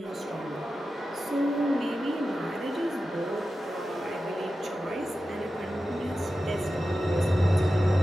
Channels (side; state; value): both; normal; correlation 0.92